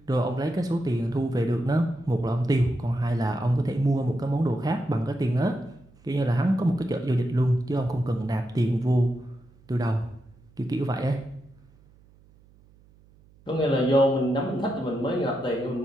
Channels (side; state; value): right; noise; hum, 28 dB below the sound